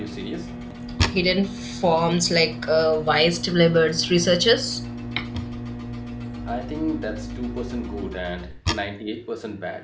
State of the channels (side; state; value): both; identical; correlation 1.00